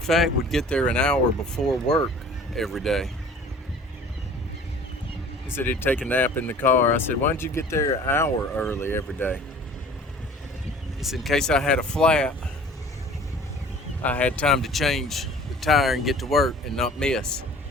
would get there an hour before work every day. He said he'd take a nap in the car. I said, "Why don't you get there an hour early every day?" He said, "In case I had a flat, I had time to change the tire and get to work and not miss."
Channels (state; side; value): normal; both; correlation 0.48